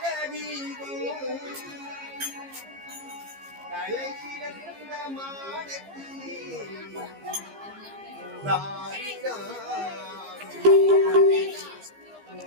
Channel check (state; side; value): late; left; 15 ms